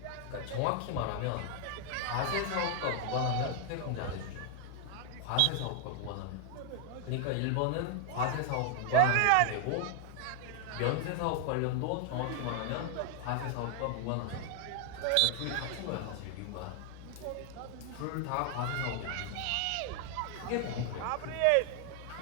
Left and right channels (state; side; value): different; both; correlation 0.00